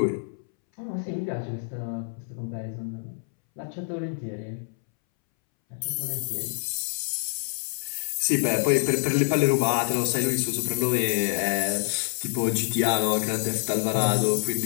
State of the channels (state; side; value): silent; right; 61 dB below the other